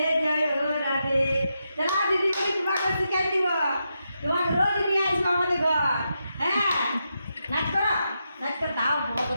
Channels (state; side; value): inverted; both; correlation -0.85